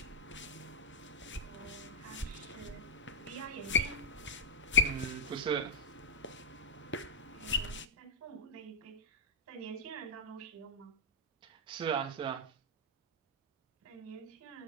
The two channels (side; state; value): both; normal; correlation -0.05